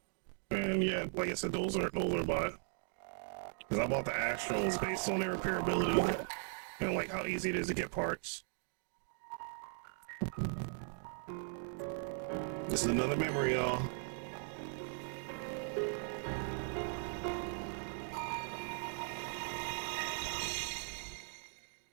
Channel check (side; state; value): left; silent; 52 dB below the other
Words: and yeah, like I said, those are by. Because I bought the Astros based on their repairability and like how easy it is to get parts. This is another memory, y'all.